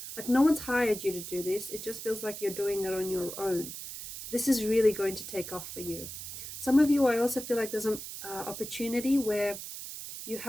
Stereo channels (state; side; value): noise; right; hiss, 9 dB below the sound